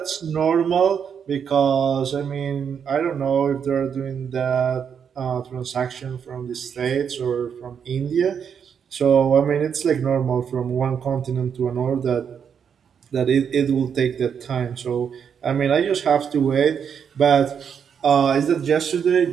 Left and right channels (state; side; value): quieter; left; 7.4 dB